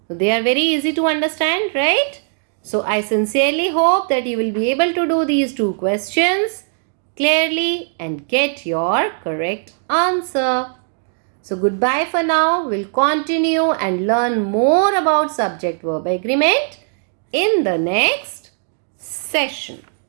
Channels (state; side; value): silent; left; digital silence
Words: So they are very easy to understand, right? So I sincerely hope that you will be able to do these two questions clearly and get your correct answer. So goodbye for now. We'll continue and learn more about subject-verb agreement in the next session.